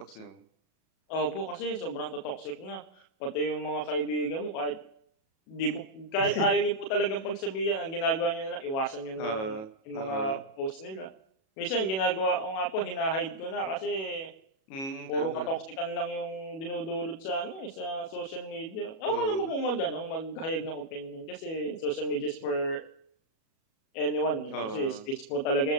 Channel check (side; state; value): right; late; 37 ms